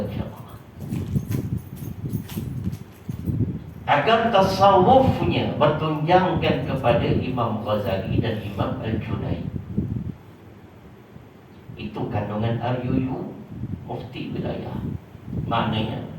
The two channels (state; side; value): identical; both; correlation 1.00